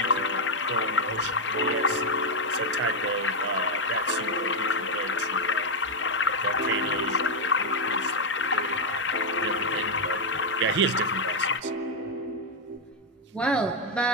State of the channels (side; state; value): both; normal; correlation 0.00